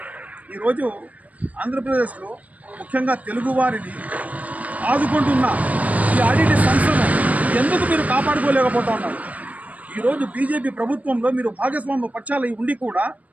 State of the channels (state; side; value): late; left; 0.071 ms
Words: ఈరోజు ఆంధ్రప్రదేశ్లో ముఖ్యంగా తెలుగువారిని ఆదుకుంటున్న ఈ ఆడిటి సంస్థను ఎందుకు మీరు కాపాడుకోలేకపోతా ఉన్నారు? ఈరోజు బీజేపీ ప్రభుత్వంలో మీరు భాగస్వామ్య పక్షాలు ఉండి కూడా